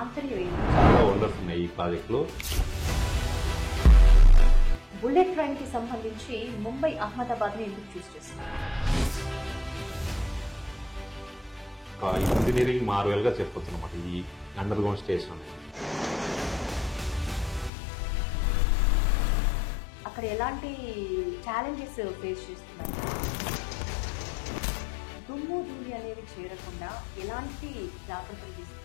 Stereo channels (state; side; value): drops out; right; at 17.7 s